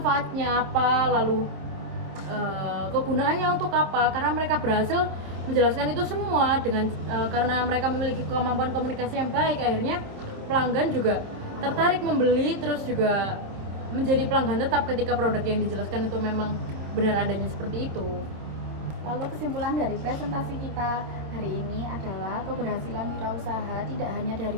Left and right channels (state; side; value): late; left; 27 ms